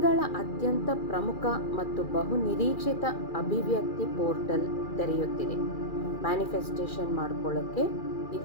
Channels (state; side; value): late; right; 2.4 ms